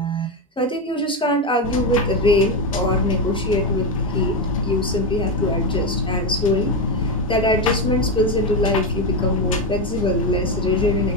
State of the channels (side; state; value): both; normal; correlation 0.12